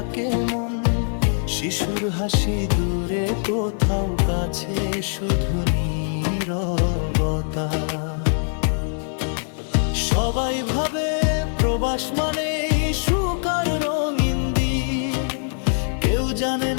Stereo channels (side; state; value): right; silent; 57 dB below the other